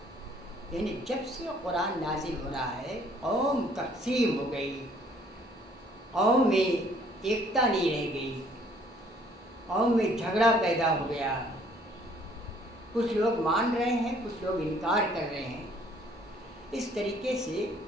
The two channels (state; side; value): normal; both; correlation 0.60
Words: یعنی جب سے قرآن نازل ہو رہا ہے قوم تقسیم ہو گئی، قوم میں ایکتا نہیں رہ گئی، قوم میں جھگڑا پیدا ہو گیا، کچھ لوگ مان رہے ہیں، کچھ لوگ انکار کر رہے ہیں۔ اس طریقے سے